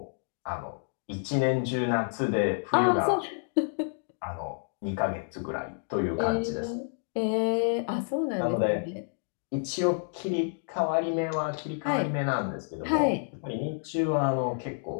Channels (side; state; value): right; silent; digital silence